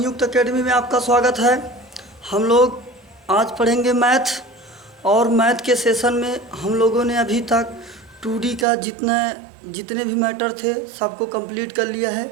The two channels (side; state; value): left; drops out; at 8.7 s